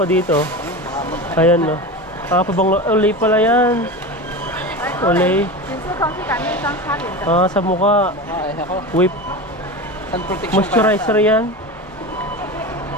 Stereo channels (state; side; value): normal; both; correlation 0.26